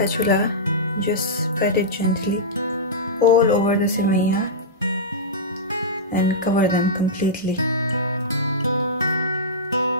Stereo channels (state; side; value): normal; both; correlation -0.14